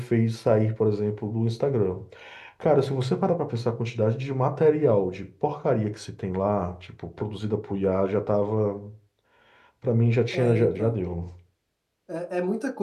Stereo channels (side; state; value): both; identical; correlation 1.00